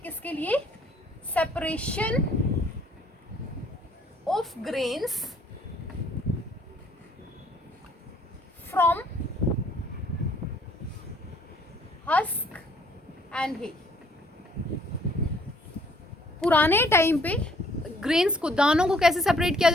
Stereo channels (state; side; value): normal; both; correlation 0.61